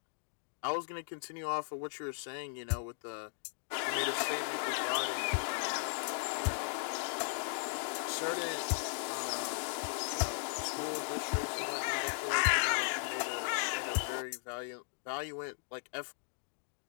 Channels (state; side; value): silent; right; digital silence